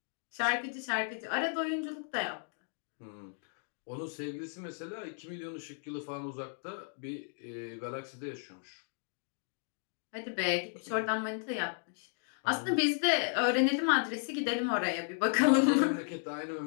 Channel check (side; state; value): right; silent; digital silence